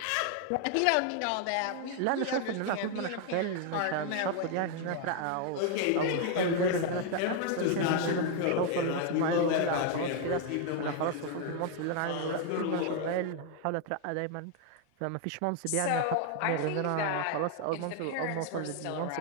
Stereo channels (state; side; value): different; both; correlation 0.00